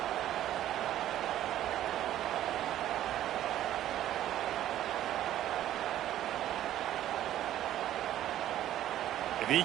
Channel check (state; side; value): quieter; left; 12.5 dB